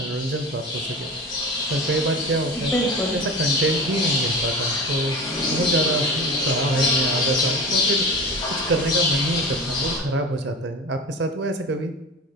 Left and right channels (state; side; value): normal; both; correlation 0.32